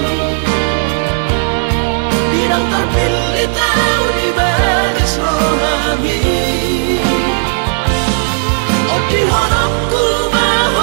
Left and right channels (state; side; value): silent; left; 71 dB below the other